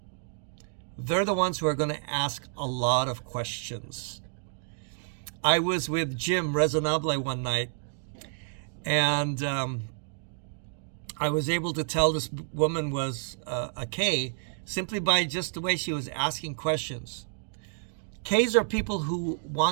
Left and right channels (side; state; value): left; silent; digital silence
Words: They're the ones who are going to ask a lot of questions. I was with Jim Resonable one night, and I was able to tell this woman was a K simply by just the way she was asking questions. Ks are people who